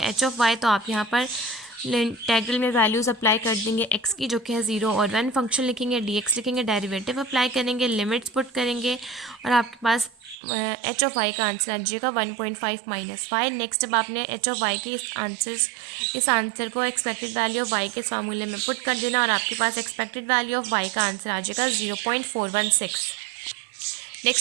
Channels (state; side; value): drops out; left; at 10.4 s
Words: ऑफ वाई, तो आप यहाँ पर इंटीग्रल में वैल्यूज़ अप्लाई कर देंगे एक्स की जो कि है 0 और 1, फंक्शन लिखेंगे, डी एक्स लिखेंगे, डेरिवेटिव अप्लाई करेंगे, लिमिट्स पुट करेंगे और आपके पास एच ऑफ वाई का आंसर आ जाएगा 1.5 माइनस वाई। नेक्स्ट, अब आपने एच ऑफ वाई के इस आंसर को एक्सपेक्टेड वैल्यू ऑफ वाई के इस फार्मूले में पुट कर देना और आपके पास एक्सपेक्टेड वैल्यू ऑफ वाई का आंसर आ जाएगा 0.416।